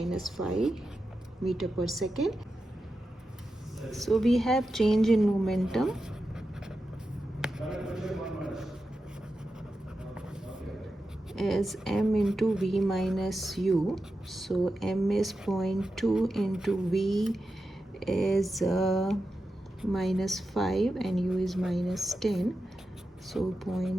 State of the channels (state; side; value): normal; both; correlation 0.90